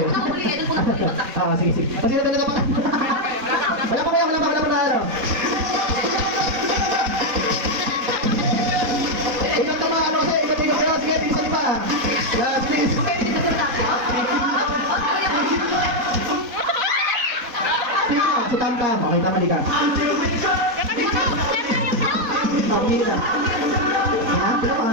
Ang huli, doon po natapatan. Ah, sige, sige. Sino na pa? Wala pa kaya, wala pa na ano. magkakamali ka. Oh, umili ka. Yan, pila pa.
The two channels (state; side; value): late; left; 3.7 ms